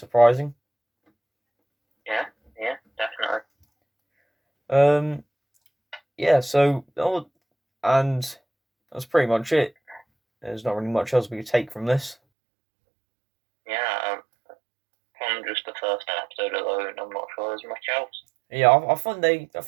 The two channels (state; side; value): drops out; left; at 12.2 s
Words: Yeah, definitely. So and that's pretty much it. There's not really much else we could take from this. Yeah, from just the first episode alone, I'm not sure there's much else. Yeah, I